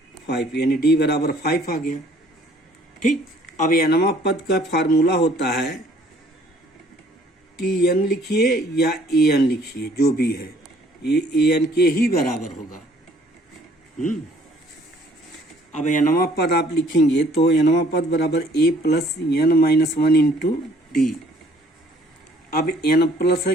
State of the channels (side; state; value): both; normal; correlation 0.59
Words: 5, यानी d बराबर 5 आ गया। ठीक, अब nवां पद का फार्मूला होता है tn लिखिए या an लिखिए, जो भी है ये an के ही बराबर होगा। अब nवां पद आप लिखेंगे तो nवां पद बराबर a plus n minus 1 into D. अब n प्लस है